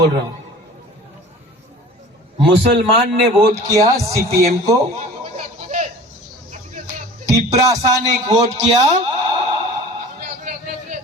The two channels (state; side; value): normal; both; correlation 0.42